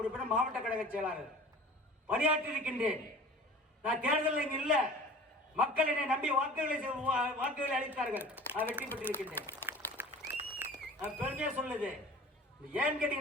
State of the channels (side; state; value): both; normal; correlation 0.42